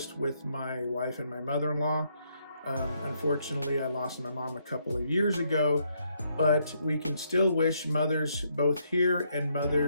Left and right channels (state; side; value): inverted; both; correlation -0.74